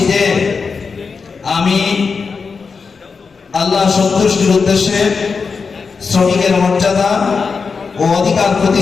যে আমি আল্লাহ সন্তুষ্টির উদ্দেশ্যে শ্রমিকের মর্যাদা ও অধিকার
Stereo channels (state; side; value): quieter; right; 5.1 dB